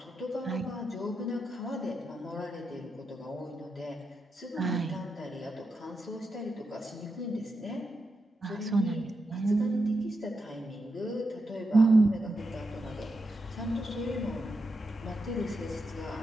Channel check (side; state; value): both; normal; correlation 0.86